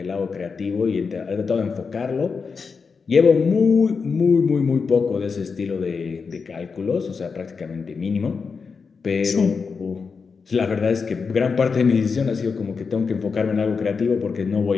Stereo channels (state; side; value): quieter; right; 5.2 dB